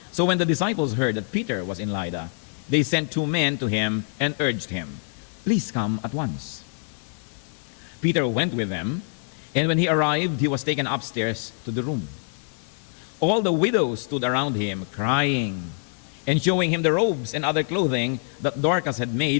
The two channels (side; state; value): right; silent; digital silence